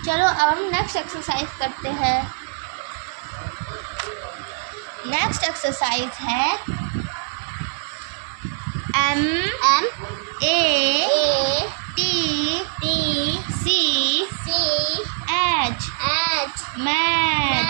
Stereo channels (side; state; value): left; silent; digital silence